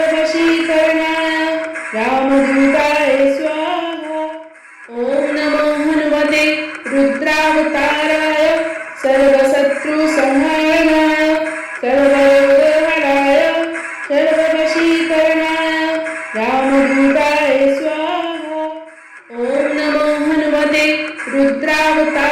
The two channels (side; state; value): both; identical; correlation 1.00